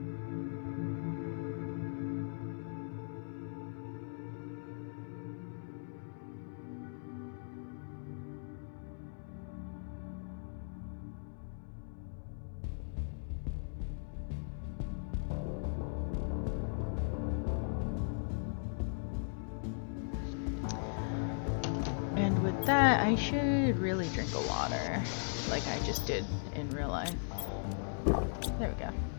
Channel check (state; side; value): silent; right; digital silence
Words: And with that, I should really drink a water, like I just did in real life. There we go.